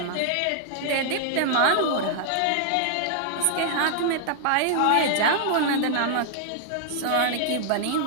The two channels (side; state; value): both; different; correlation -0.01